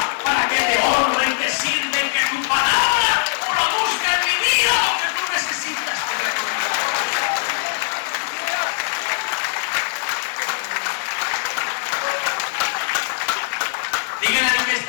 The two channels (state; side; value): silent; right; digital silence